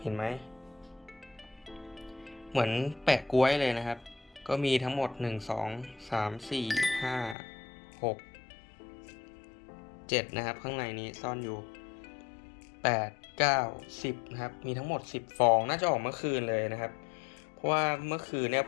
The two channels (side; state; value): right; drops out; at 7.4 s